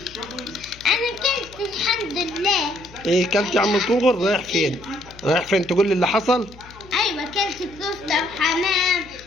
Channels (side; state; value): left; noise; hum, 22 dB below the sound